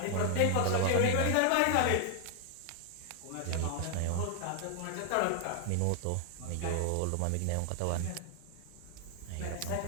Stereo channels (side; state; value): both; different; correlation 0.00